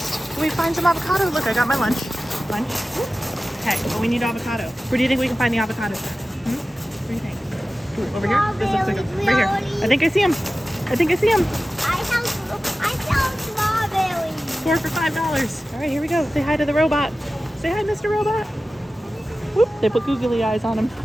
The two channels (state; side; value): normal; both; correlation 0.95